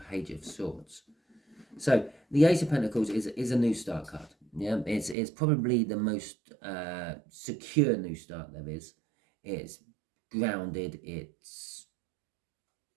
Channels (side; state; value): left; drops out; at 5.2 s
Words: of Swords. So the Ace of Pentacles is a new start card. Yeah, it's probably the most secure new start there is. It's grounded. It's